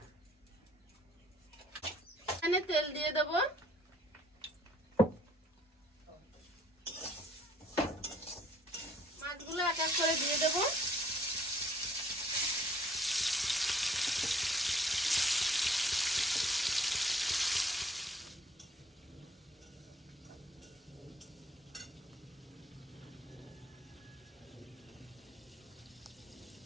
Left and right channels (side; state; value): both; normal; correlation 0.60